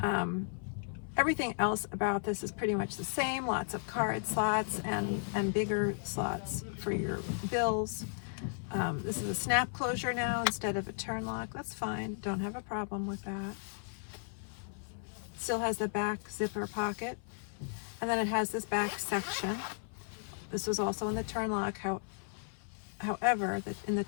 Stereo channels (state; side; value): silent; right; 54 dB below the other